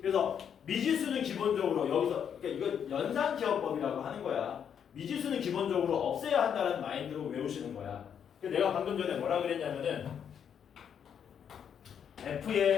그래서 미지수는 기본적으로 여기서 그러니까 이거 연산기억법이라고 하는 거야. 미지수는 기본적으로 없애야 한다는 마인드로 외우시는 거야. 내가 방금 전에 뭐라 그랬냐면은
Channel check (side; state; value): right; quieter; 8.1 dB